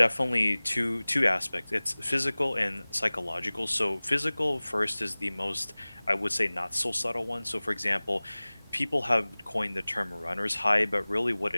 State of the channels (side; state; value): both; inverted; correlation -1.00